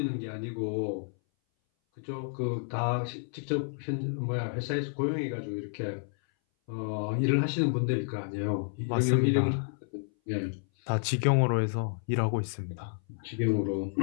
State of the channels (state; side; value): silent; right; 58 dB below the other